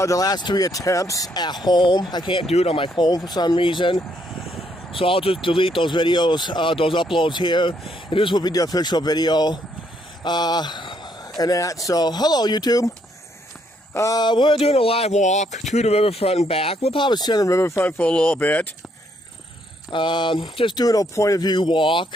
last 3 attempts at home. I can't do it on my phone for some reason, so I'll just delete those videos, those uploads here, and this will be the official video. And that. So, hello YouTube. We're doing a live walk to the riverfront and back. We'll probably sit on the riverfront for a little bit. Just doing a point of view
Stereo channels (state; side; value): normal; both; correlation 0.72